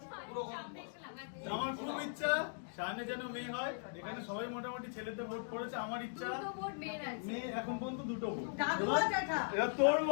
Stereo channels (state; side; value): silent; right; digital silence